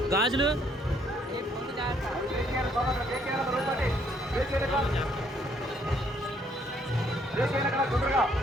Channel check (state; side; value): normal; both; correlation 0.67